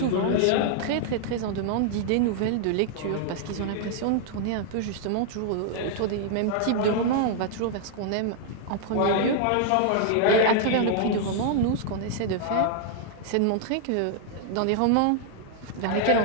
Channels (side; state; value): both; different; correlation -0.01